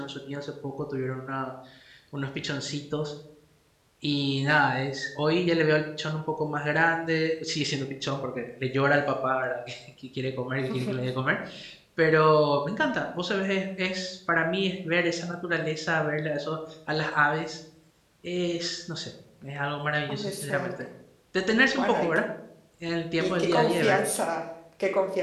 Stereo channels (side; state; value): both; identical; correlation 1.00